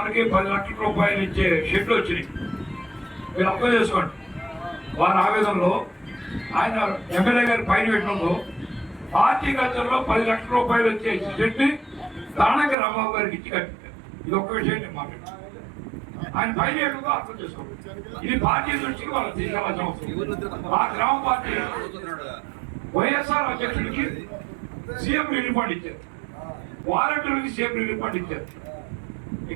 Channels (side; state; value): left; drops out; at 12.8 s